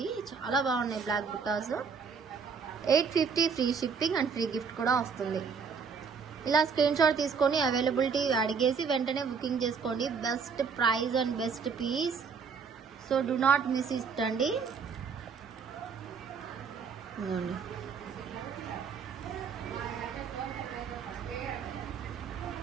చాలా బాగున్నాయి బ్లాక్ బుట్టాస్. 850 free shipping and free gift కూడా వస్తుంది. ఇలా స్క్రీన్ షాట్ తీసుకొని అవైలబిలిటీ అడిగేసి వెంటనే బుకింగ్ చేసుకోండి. Best price and best piece. So do not miss it అండి. ఇదిగోండి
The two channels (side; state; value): left; quieter; 5.8 dB